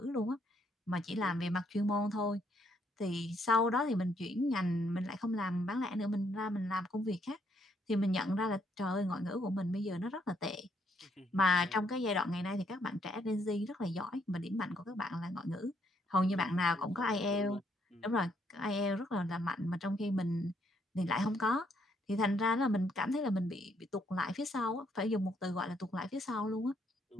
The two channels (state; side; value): normal; both; correlation 0.71